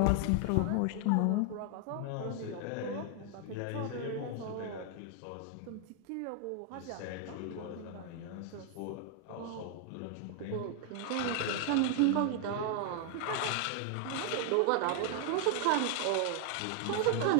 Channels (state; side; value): different; both; correlation 0.00